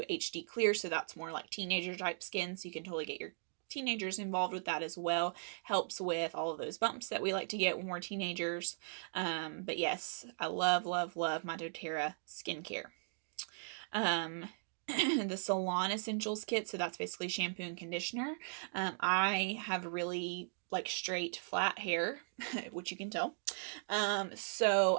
HD Clear, so that's more like teenager type skin, so you can totally get your teenagers involved with that as well. Helps with all of those bumps that we like to get when we're teenagers. But yes, I love my doTERRA skincare. The Salon Essentials kit, so that's basically shampoo and conditioner. I have really like straight flat hair, which you can tell, so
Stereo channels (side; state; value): left; silent; digital silence